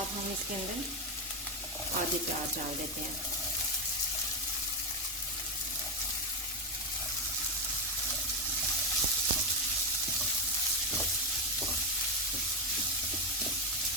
हम इसके अंदर आधे प्याज डाल देते हैं।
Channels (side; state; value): both; normal; correlation 0.08